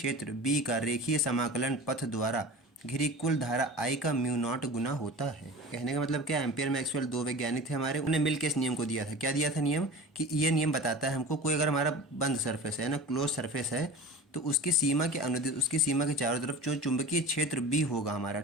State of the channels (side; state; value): both; normal; correlation 0.35